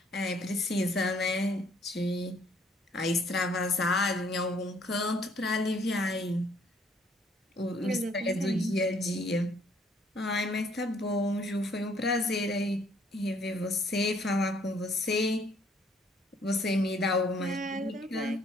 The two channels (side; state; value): both; normal; correlation 0.63